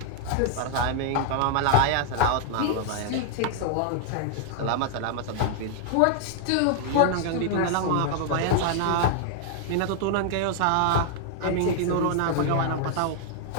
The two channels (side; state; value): both; different; correlation 0.00